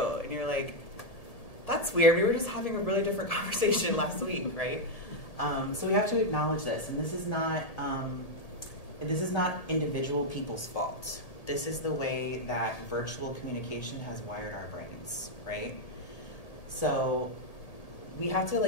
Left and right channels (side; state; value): right; late; 1.7 ms